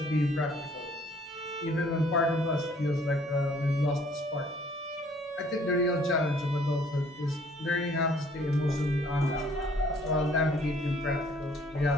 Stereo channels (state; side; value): normal; both; correlation 0.59